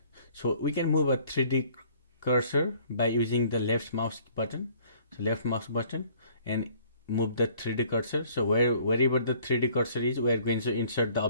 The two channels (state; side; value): inverted; both; correlation -0.57